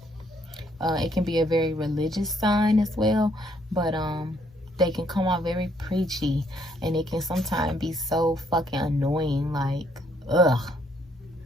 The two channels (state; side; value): normal; both; correlation 0.68